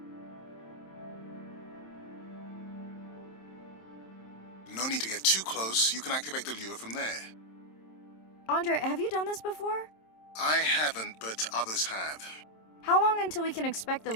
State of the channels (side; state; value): right; late; 27 ms